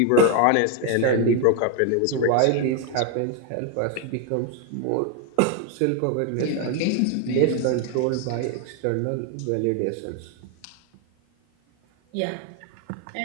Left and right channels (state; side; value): different; both; correlation 0.01